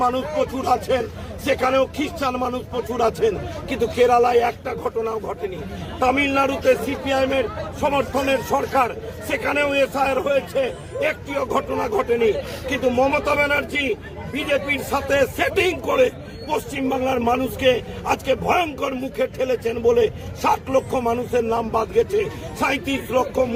মানুষ প্রচুর আছেন, সেখানেও খ্রিস্টান মানুষ প্রচুর আছেন, কিন্তু কেরালায় একটা ঘটনাও ঘটেনি। তামিলনাড়ুতে সিপিআইএম এর সমর্থনের সরকার, সেখানেও এসআইআর হয়েছে, একটিও ঘটনা ঘটেনি। কিন্তু মমতা ব্যানার্জি বিজেপির সাথে সেটিং করে পশ্চিমবাংলার মানুষকে আজকে ভয়ঙ্কর মুখে ঠেলেছেন বলে 60 লক্ষ মানুষের নাম বাদ গেছে। 37 লক্ষ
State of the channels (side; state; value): both; identical; correlation 1.00